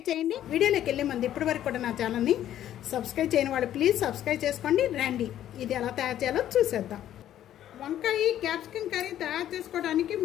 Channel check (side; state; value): right; quieter; 11.7 dB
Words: చేయండి వీడియోలోకి వెళ్ళే ముందు ఇప్పటివరకు కూడా నా ఛానల్ ని సబ్స్క్రైబ్ చేయని వాళ్ళు ప్లీజ్ సబ్స్క్రైబ్ చేసుకోండి రండి ఇది ఎలా తయారు చేయాలో చూసేద్దాం వంకాయ క్యాప్సికమ్ కర్రీ తయారు చేసుకోవడానికి